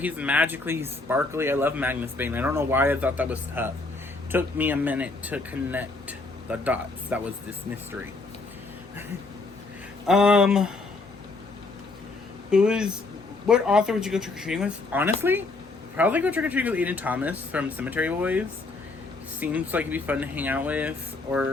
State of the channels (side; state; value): right; quieter; 3.5 dB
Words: magically. He's sparkly. I love Magnus Bane. I don't know why I thought that was tough. Took me a minute to connect the dots. That was this mystery. What author would you go trick-or-treating with? Honestly, probably go trick-or-treating with Aiden Thomas from Cemetery Boys. Seems like he'd be fun to hang out with.